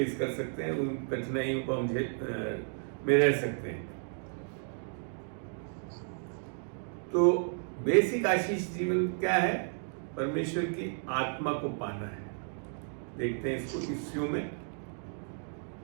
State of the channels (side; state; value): left; silent; 56 dB below the other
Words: कर सकते हैं, उन कठिनाइयों को हम में रह सकते हैं। तो बेसिक आशीष जीवन क्या है? परमेश्वर की आत्मा को पाना है। देखते हैं इसको इफ्सियों में,